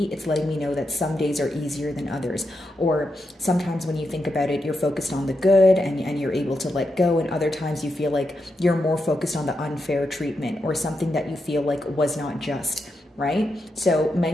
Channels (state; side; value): normal; both; correlation 0.85